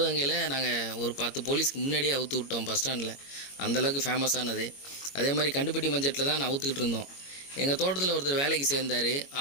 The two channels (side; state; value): right; late; 22 ms